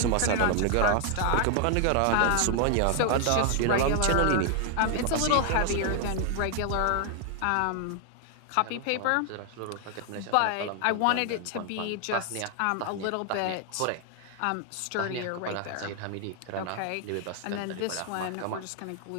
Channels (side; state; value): both; different; correlation 0.00